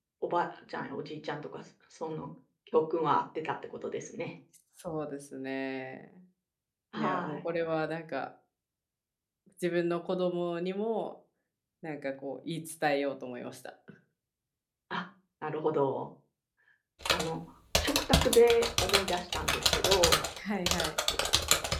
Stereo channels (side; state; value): both; identical; correlation 1.00